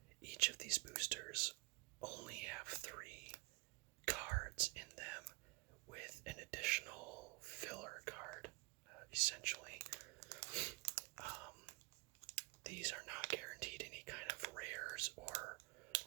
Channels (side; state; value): left; quieter; 26.1 dB